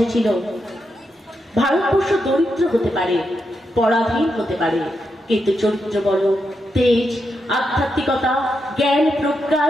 ভারতবর্ষ দরিদ্র হতে পারে, পরাধীন হতে পারে, কিন্তু চরিত্র বড়, তেজ, আধ্যাত্মিকতা, জ্ঞান,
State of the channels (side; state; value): both; normal; correlation 0.84